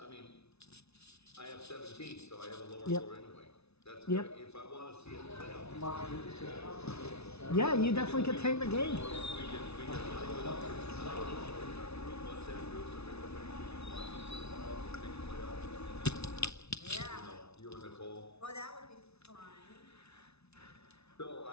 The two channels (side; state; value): right; late; 0.80 ms